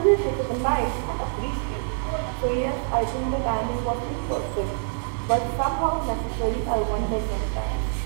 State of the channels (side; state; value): left; silent; 55 dB below the other